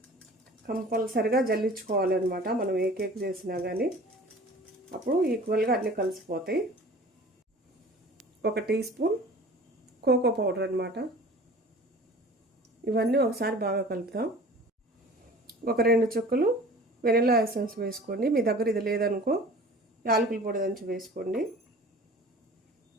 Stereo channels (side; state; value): both; normal; correlation 0.44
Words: కంపల్సరిగా జల్లించుకోవాలన్నమాట మనం ఏ కేక్ చేసినా కానీ. అప్పుడు ఈక్వల్గా అన్నీ కలిసిపోతాయి. 1 టీ స్పూన్ కోకో పౌడర్ అనమాట. ఇవన్నీ ఒకసారి బాగా కలుపుతాం. 2 చుక్కలు వెనిలా ఎసెన్స్ వేసుకోండి. మీ దగ్గర ఇది లేదనుకో యాలకుల పొడి దంచి వేసుకోండి.